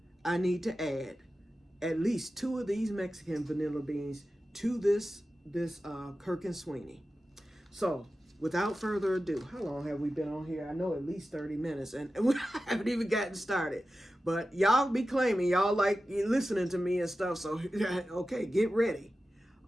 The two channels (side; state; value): both; normal; correlation 0.93